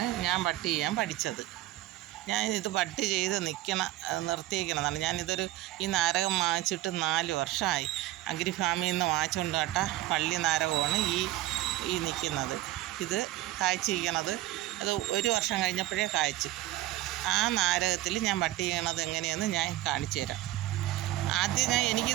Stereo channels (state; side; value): quieter; left; 16.0 dB